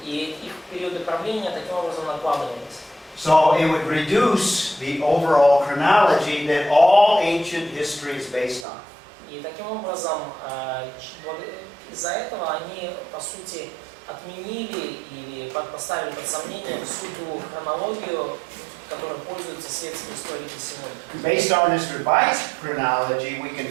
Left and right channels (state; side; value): drops out; left; at 8.7 s